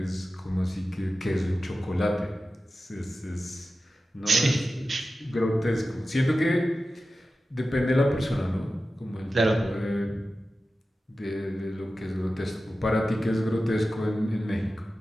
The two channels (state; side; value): normal; both; correlation 0.94